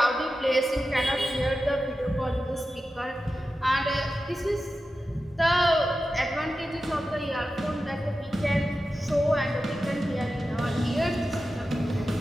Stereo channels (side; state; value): both; normal; correlation 0.92